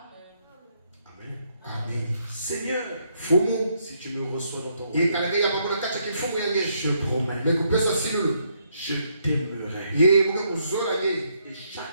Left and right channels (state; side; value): inverted; both; correlation -0.74